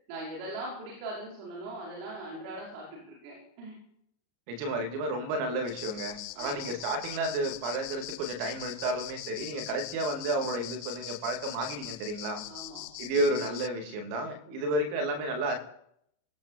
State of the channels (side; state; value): left; late; 33 ms